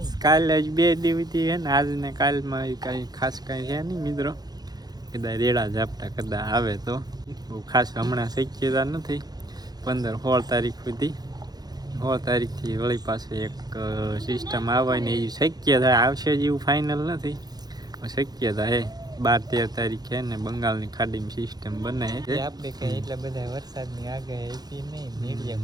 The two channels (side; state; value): left; late; 0.19 ms